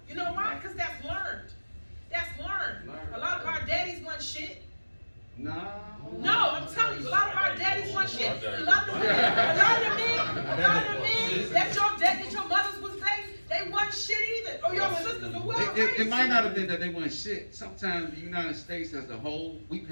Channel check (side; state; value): both; inverted; correlation -1.00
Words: You know why? Because that's learned. That's learned. A lot of our daddies want shit. No, I'm telling you, a lot of our daddies want shit. A lot of the men dating, that your mothers was dating, they wasn't shit either, or your sisters or whoever. It might not have been that they weren't shit. Sometimes the United States as a whole, we